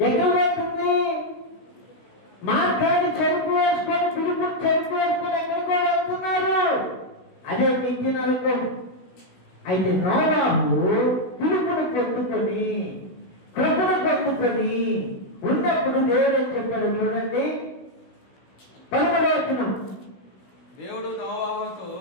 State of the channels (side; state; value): right; late; 16 ms